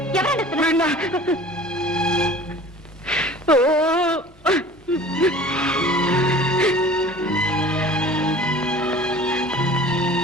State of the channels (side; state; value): both; normal; correlation 0.44